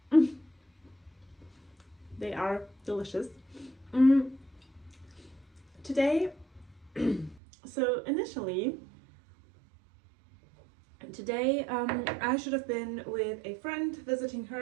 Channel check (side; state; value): left; drops out; at 7.4 s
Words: They are delicious. Today, so initially, today I should have been with a friend visiting